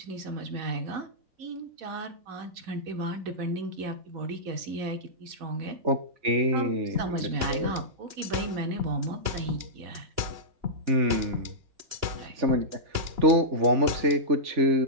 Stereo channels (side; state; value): left; late; 3.4 ms